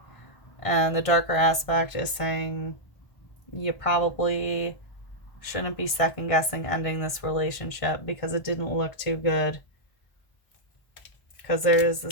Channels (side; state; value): right; late; 1.6 ms